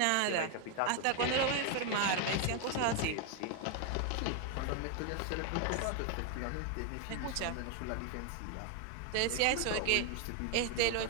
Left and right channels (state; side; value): different; both; correlation 0.01